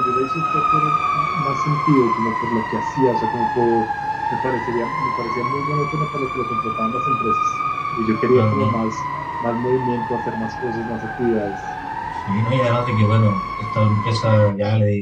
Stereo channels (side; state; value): both; identical; correlation 1.00